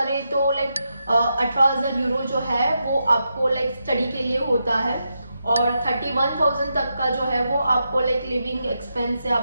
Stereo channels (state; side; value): inverted; both; correlation -0.85